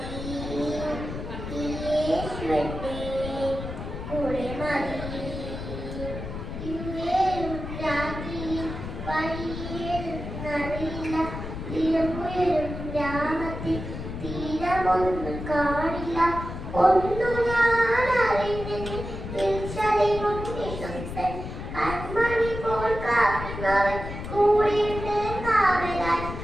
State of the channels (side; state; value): left; noise; rumble, 8 dB below the sound